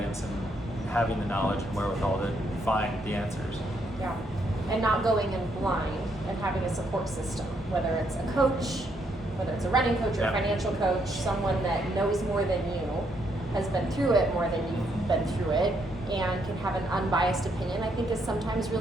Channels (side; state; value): both; normal; correlation 0.74